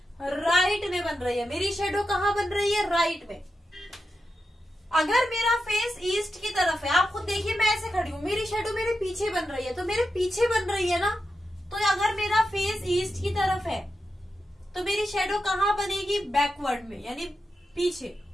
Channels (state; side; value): normal; both; correlation 0.89